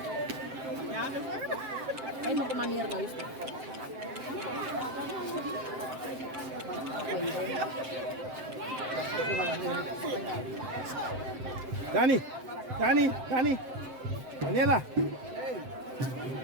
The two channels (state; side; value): late; left; 7.7 ms